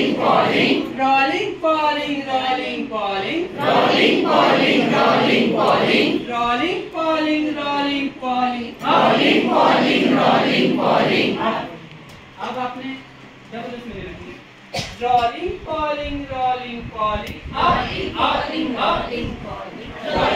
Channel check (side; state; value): both; identical; correlation 1.00